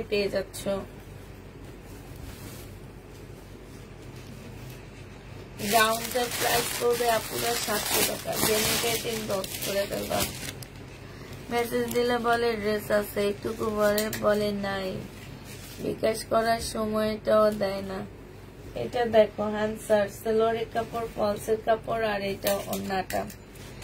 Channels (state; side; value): identical; both; correlation 1.00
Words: পেয়ে যাচ্ছ। গাউনটার প্রাইস পড়বে আপনারা 700 টাকা। জেনিকে ইনবক্স করে দেবা, মেসেজ দিলে বলে ড্রেস আছে, একটুকু বলে নাই, বিকাশ করার সময়টাও দেয় না। এটা দেখো হ্যান্সার, সালোয়ারের কাপড়, ফলসের কাপড়, আর এটা ওড়নাটা।